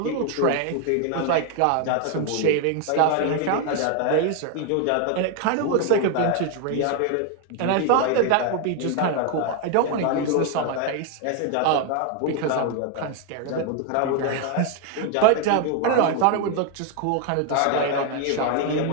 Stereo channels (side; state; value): both; different; correlation 0.01